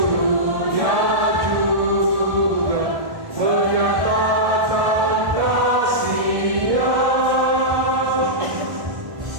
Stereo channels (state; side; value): late; left; 1.7 ms